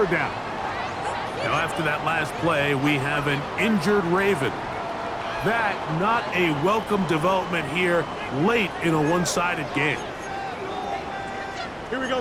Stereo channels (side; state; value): both; identical; correlation 1.00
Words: down. Now, after that last play, we have an injured Raven. That not a welcome development here late in a one-sided game. Here we go,